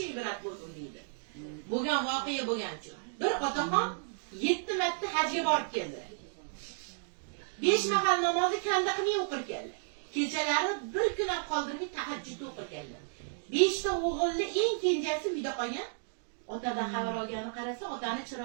ibrat bo'lsin deydi? Bo'lgan voqea bo'lgancha. Bir otaxon 7 marta hajga borib keldilar. 5 mahal namozni kanda qilmay o'qir keldi. Kechalari bir kun ham qoldirmay tahajjud o'qir keldi. 5 ta o'g'ilni eng kenjasi uyda qolgan. Otadan xabar olgani qarasa, otani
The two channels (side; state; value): left; silent; digital silence